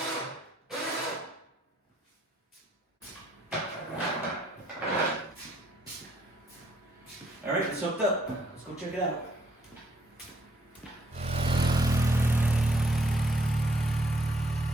All right, it's hooked up. Let's go check it out.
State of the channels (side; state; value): both; normal; correlation 0.69